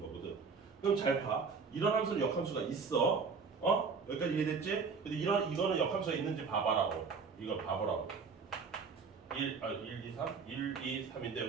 거거든. 그럼 잘 봐. 이런 함수는 역함수가 있어. 여기까지 이해됐지? 근데 이거는 역함수가 있는지 봐봐라고. 이거 봐보라고. 1, 2, 3? 1, 2, 3인데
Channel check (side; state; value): left; quieter; 5.1 dB